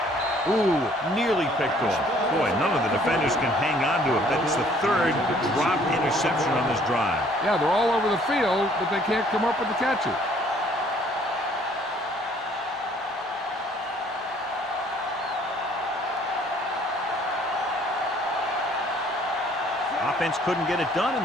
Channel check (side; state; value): both; normal; correlation 0.59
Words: Ooh, nearly picked off. Boy, none of the defenders can hang on to it. That's the third drop interception on this drive. Yeah, they're all over the field, but they can't come up with the catches. Offense couldn't get it done,